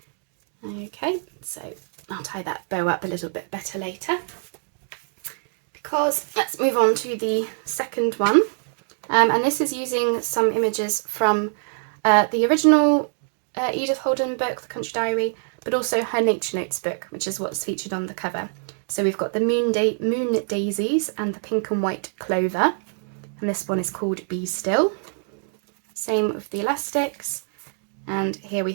Okay, so I'll tie that bow up a little bit better later. Because let's move on to the second one. And this is using some images from the original Edith Holden book, The Country Diary, but also her Nature Notes book, which is what's featured on the cover. So we've got the moon daisies and the pink and white clover, and this one is called Be Still. Same with the elastics, and here we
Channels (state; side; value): silent; left; digital silence